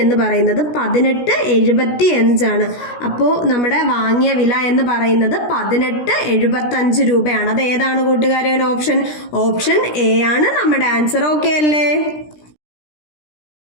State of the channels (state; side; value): late; right; 17 ms